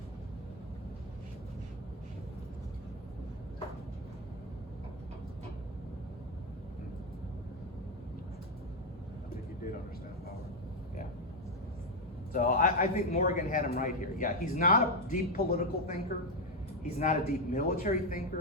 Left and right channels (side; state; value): both; normal; correlation 0.06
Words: I think he did understand power. Yeah. So I think Morgan had him right here. Yeah, he's not a deep political thinker. He's not a deep military